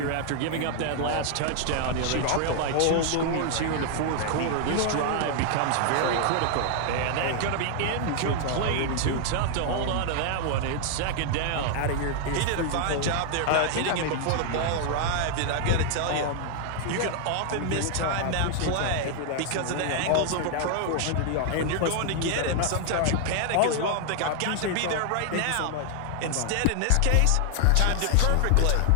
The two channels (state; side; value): different; both; correlation 0.00